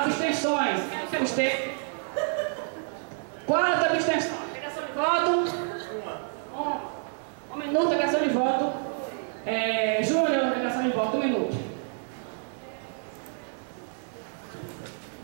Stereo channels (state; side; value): silent; left; 59 dB below the other